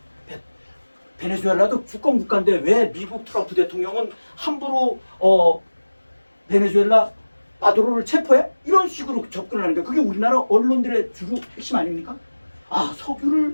베네수엘라도 주권 국가인데 왜 미국 트럼프 대통령은 함부로 베네수엘라 마두로를 체포해? 이런 식으로 접근을 하는 거야. 그게 우리나라 언론들의 주로 핵심 아닙니까?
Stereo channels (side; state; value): both; inverted; correlation -1.00